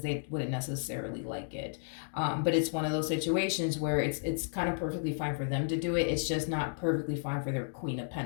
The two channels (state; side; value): silent; right; digital silence